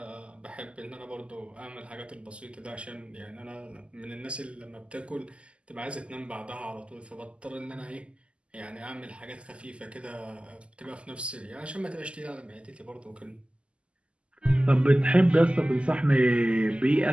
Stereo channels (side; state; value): left; late; 0.055 ms